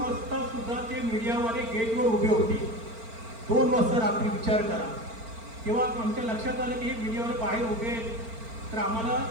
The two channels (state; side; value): late; left; 4.4 ms